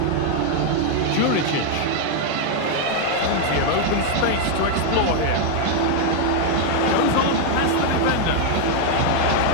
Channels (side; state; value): both; different; correlation 0.00